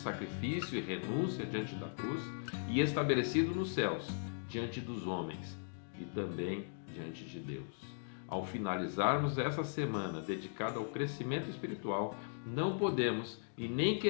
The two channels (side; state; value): right; silent; digital silence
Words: e renúncia diante da cruz e estabelecido nos céus, diante dos homens e também diante de Deus. Ao finalizarmos essa semana dedicada ao crescimento espiritual, não podemos e nem